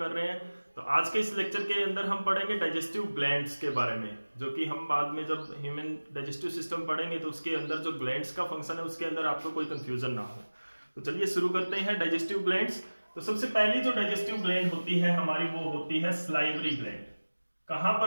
रहे हैं, तो आज के इस लेक्चर के अंदर हम पढ़ेंगे डाइजेस्टिव ग्लैंड्स के बारे में, जो कि हम बाद में जब ह्यूमन डाइजेस्टिव सिस्टम पढ़ेंगे तो उसके अंदर जो ग्लैंड्स का फंक्शन है उसके अंदर आपको कोई कंफ्यूजन ना हो। तो चलिए शुरू करते हैं डाइजेस्टिव ग्लैंड्स। तो सबसे पहली जो डाइजेस्टिव ग्लैंड होती है हमारी, वो होती है सलाइवरी ग्लैंड। कहां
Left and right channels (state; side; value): inverted; both; correlation -1.00